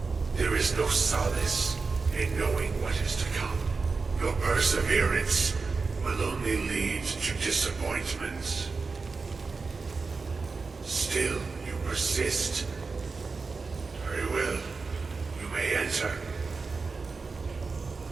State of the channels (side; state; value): left; quieter; 4.4 dB